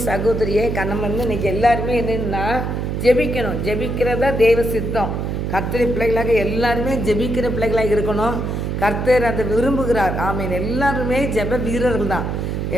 சகோதரியே நம்ம வந்து இன்றைக்கி எல்லாருமே என்னென்னா ஜெபிக்கணும். ஜெபிக்கிறதா தெய்வ சித்தம். கர்த்தர் பிள்ளைகளாக எல்லாருமே ஜெபிக்கிற பிள்ளைகளாக இருக்கணும். கர்த்தர் அதை விரும்புகிறார். ஆமீன். எல்லாருமே ஜெப வீரர்கள் தான்.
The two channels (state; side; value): noise; right; hum, 2 dB below the sound